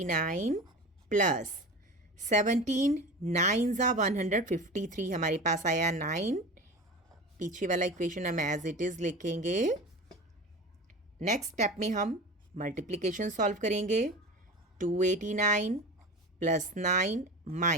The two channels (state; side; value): normal; both; correlation 0.32